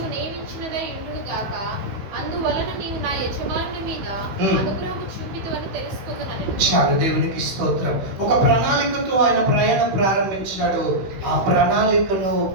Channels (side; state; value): left; late; 16 ms